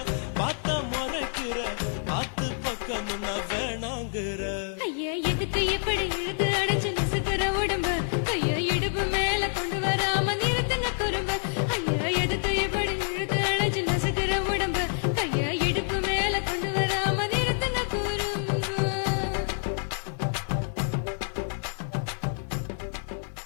பார்த்தா முறைக்கிற பார்த்து பக்கம் நான் வேணாங்கிற. ஐயா, எதுக்கு இப்படி இழுத்து அணைச்சு நசுக்குற உடம்ப? கைய இடுப்பு மேல கொண்டு வராம நிறுத்துங்க குறும்ப. ஐயா, எதுக்கு இப்படி இழுத்து அணைச்சு நசுக்குற உடம்ப? கைய இடுப்பு மேல கொண்டு வராம நிறுத்துங்க குறும்ப.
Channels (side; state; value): right; silent; digital silence